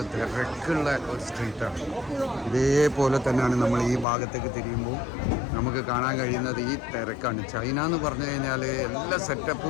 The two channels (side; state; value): right; drops out; at 4.0 s